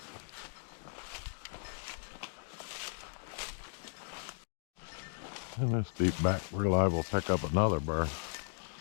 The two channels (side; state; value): right; silent; digital silence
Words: In this deep back, we're liable to pick up another bird.